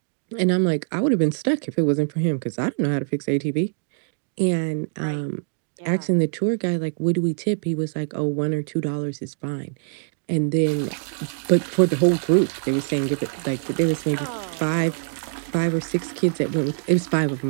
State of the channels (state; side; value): silent; left; digital silence